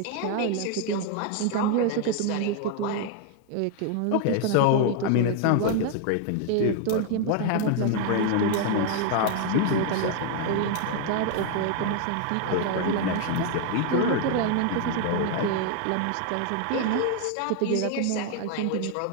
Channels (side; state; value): both; different; correlation 0.00